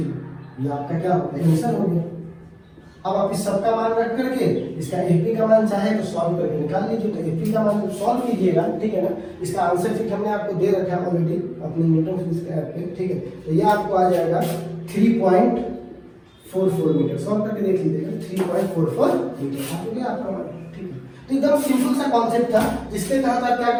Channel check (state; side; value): identical; both; correlation 1.00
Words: ये आपका क्या होगा, आंसर हो गया। अब आप इस सब का मान रख करके इसका एपी का मान चाहे तो सॉल्व करके निकाल लीजिए। तो एपी का मान सॉल्व कीजिएगा, ठीक है ना। इसका आंसर शीट हमने आपको दे रखा है ऑलरेडी अपने न्यूटन फिजिक्स के ऐप पे, ठीक है। तो ये आपको आ जाएगा 3.44 मीटर। सॉल्व करके देख लीजिएगा 3.44 मीटर आ गया आपका मान, ठीक है। तो एकदम सिंपल सा कॉन्सेप्ट था जिसके तहत आप क्या